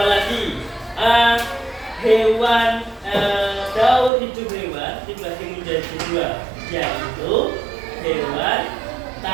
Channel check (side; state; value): left; drops out; at 4.1 s